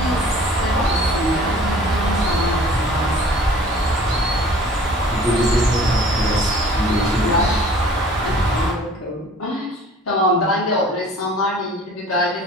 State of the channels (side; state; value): both; normal; correlation 0.49